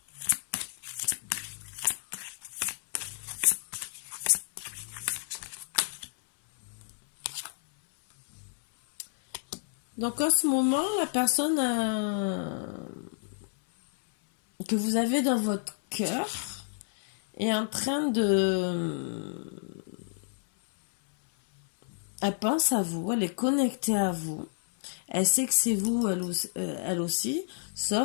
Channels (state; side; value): silent; right; 58 dB below the other